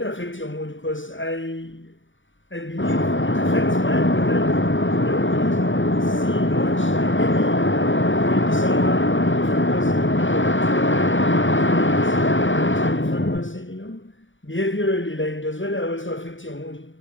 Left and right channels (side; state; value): right; late; 0.56 ms